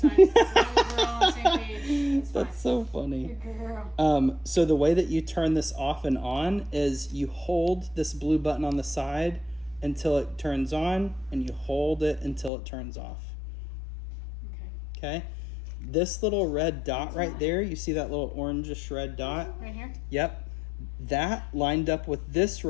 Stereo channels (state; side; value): drops out; right; at 12.5 s